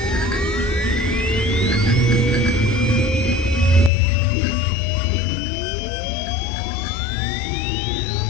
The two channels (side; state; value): right; drops out; at 3.9 s